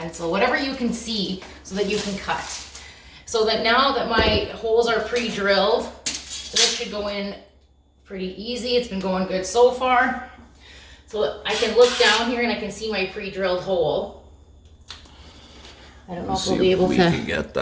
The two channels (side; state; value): both; identical; correlation 1.00